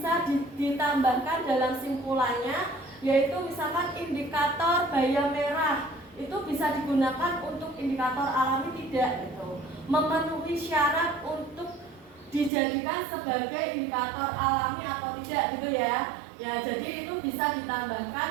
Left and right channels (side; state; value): left; drops out; at 12.5 s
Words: ditambahkan dalam simpulannya, yaitu misalkan indikator bayam merah. Itu bisa digunakan untuk indikator alami tidak gitu, memenuhi syarat untuk dijadikan sebagai indikator alami atau tidak gitu ya. Ya, jadi itu bisa